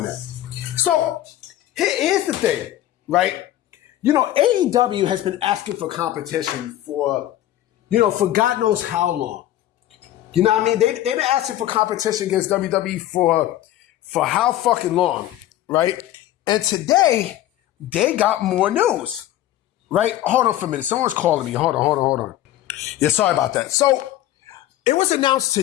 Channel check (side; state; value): right; quieter; 13.6 dB